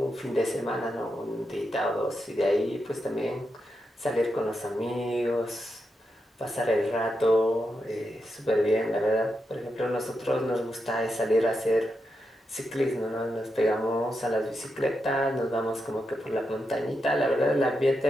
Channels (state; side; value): normal; both; correlation 0.86